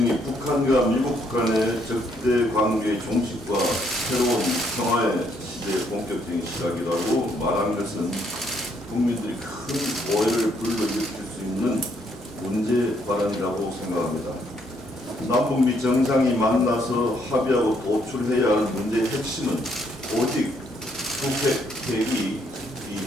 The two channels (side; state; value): both; normal; correlation 0.71